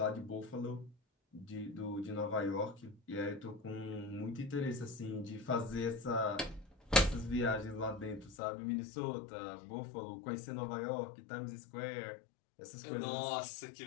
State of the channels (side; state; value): right; drops out; at 8.3 s